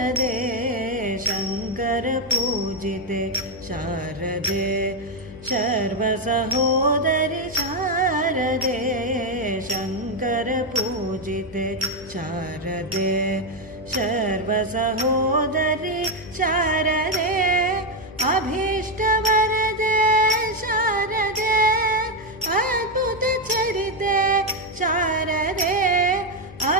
शङ्कर पूजिते शारदे सर्वसहोदरि शारदे शङ्कर पूजिते शारदे सर्वसहोदरि शारदे अभीष्टवरदे शारदे अद्भुतचरिते शारदे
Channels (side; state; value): left; noise; hum, 17 dB below the sound